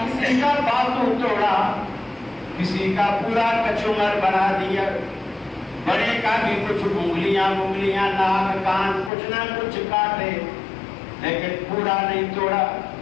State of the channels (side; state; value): right; drops out; at 9.1 s